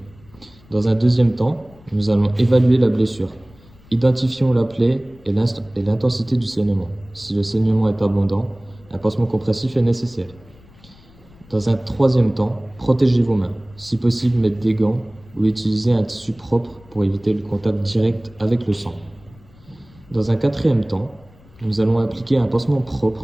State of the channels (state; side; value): noise; left; rumble, 26 dB below the sound